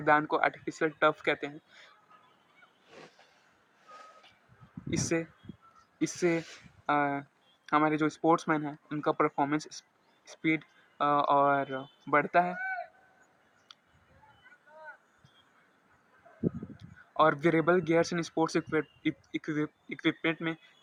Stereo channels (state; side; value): identical; both; correlation 1.00